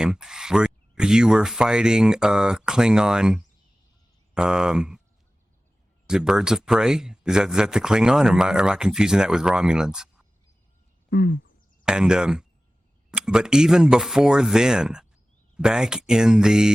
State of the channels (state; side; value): normal; both; correlation 0.96